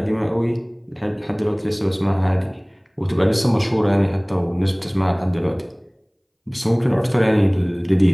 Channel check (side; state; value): both; identical; correlation 1.00